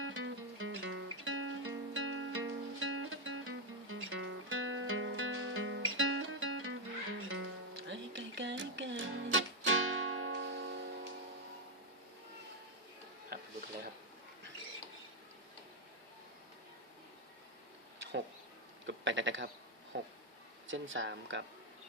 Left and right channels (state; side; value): normal; both; correlation 0.02